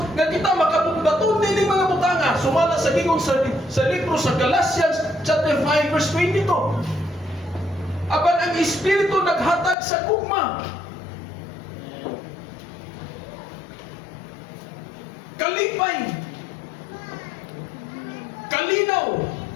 nga kita makabugbaton nining mga butanga sumala sa gingon sa libro sa Galatians chapter 5 verse 22. Apan ang Espiritu naghatag sa gugma. Kalipay. Kalinaw.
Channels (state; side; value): drops out; right; at 9.8 s